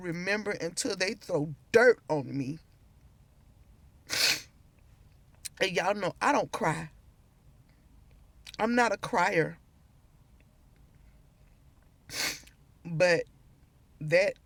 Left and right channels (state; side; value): identical; both; correlation 1.00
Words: until they throw dirt on me. And y'all know I don't cry. I'm not a crier. But that